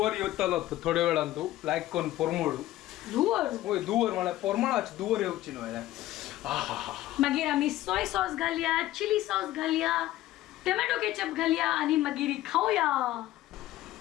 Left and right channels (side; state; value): right; quieter; 15.2 dB